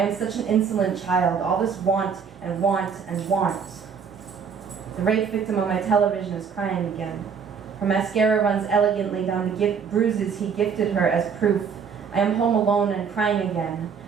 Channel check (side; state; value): left; quieter; 6.5 dB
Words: such an insolent child, all this want and want and want. The rape victim on my television is crying again. Her mascara runs elegantly down the bruises he gifted her as proof. I am home alone and crying again.